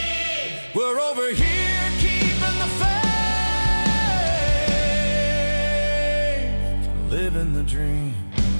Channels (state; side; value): inverted; both; correlation -1.00